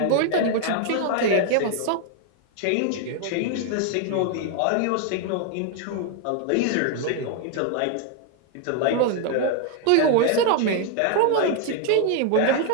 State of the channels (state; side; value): different; both; correlation 0.00